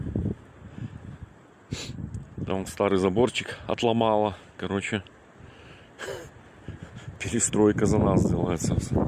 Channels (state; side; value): identical; both; correlation 1.00